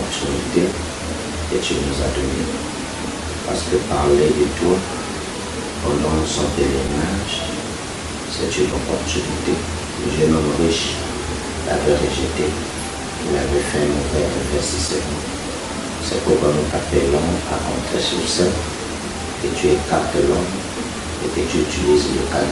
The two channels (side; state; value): both; identical; correlation 1.00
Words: que tu nous as donnée. Parce que parler de toi pendant son pèlerinage, c'est une opportunité. Le jeune homme riche l'avait rejeté. Il avait fait un frère de faire si seulement. C'est pourquoi nous t'appelons à rentrer sur scène, que tu écartes l'homme et que tu utilises le